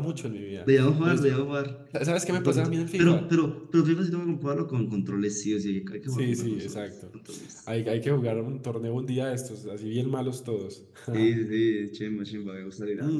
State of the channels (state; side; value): identical; both; correlation 1.00